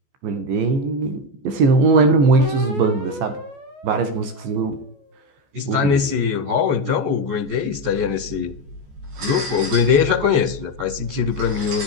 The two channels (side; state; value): left; late; 14 ms